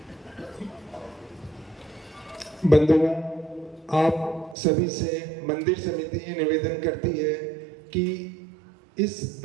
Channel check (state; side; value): drops out; left; at 4.5 s